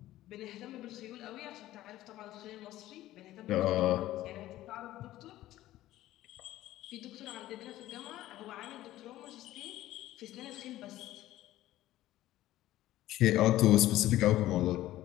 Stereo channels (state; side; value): quieter; right; 15.0 dB